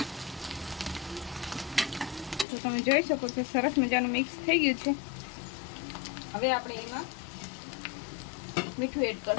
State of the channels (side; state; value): right; drops out; at 2.5 s